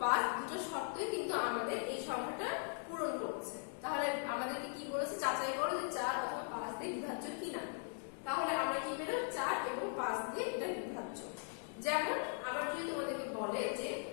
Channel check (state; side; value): silent; right; 51 dB below the other